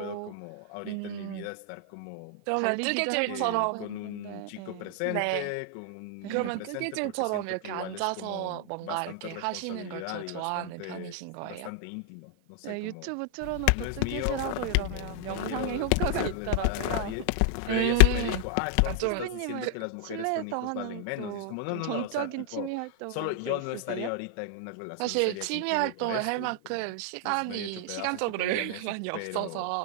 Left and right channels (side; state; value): both; different; correlation 0.00